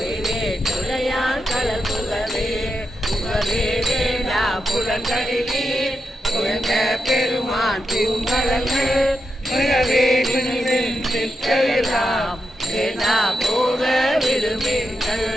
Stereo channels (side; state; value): both; normal; correlation 0.86